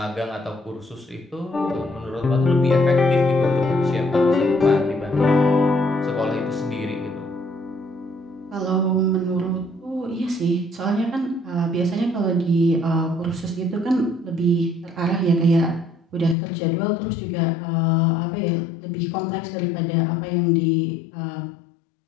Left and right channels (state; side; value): drops out; right; at 16.4 s